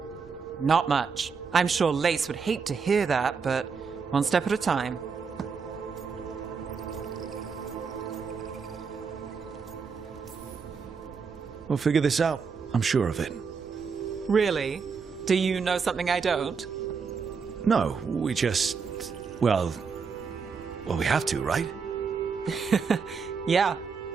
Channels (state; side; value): quieter; left; 5.6 dB